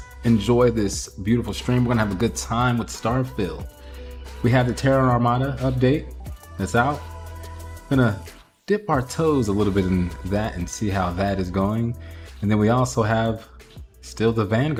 enjoy this beautiful stream. We're gonna have a good time with Starfield. We have the Terran Armada update that's out. Gonna dip our toes a little bit in that and see how that is going. And then we also have still the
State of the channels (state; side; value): identical; both; correlation 1.00